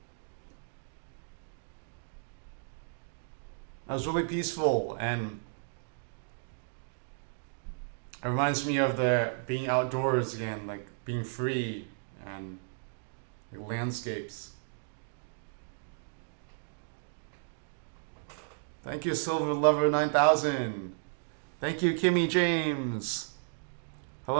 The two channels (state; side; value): silent; left; digital silence